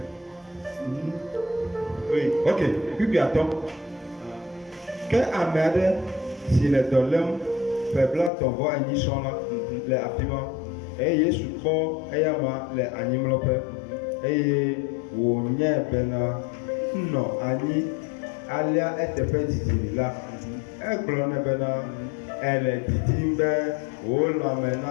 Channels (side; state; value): right; drops out; at 8.3 s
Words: Oui. Ok, kpikpi atɔ. Ke ame aɖe si le dɔ lém peblatɔ vɔ enyi sɔŋ la le afi ma eye Yesu kpɔ eyama le anyimlɔƒe eye wònye bena nɔ anyi. Alia eteƒe didi la, egblɔ ne bena ele didim be wò lãme